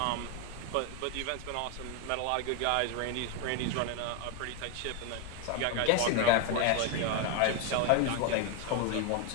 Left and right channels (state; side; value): different; both; correlation 0.01